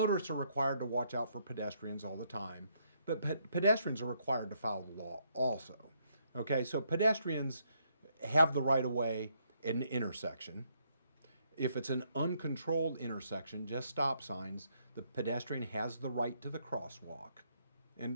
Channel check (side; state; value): both; inverted; correlation -0.73